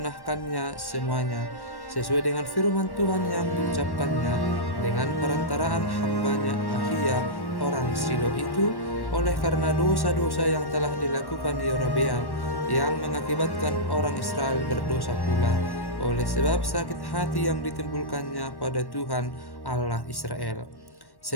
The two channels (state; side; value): late; right; 1.1 ms